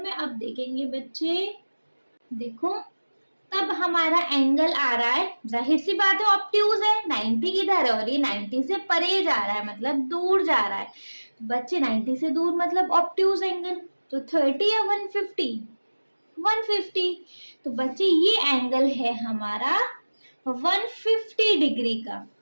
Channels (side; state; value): both; inverted; correlation -1.00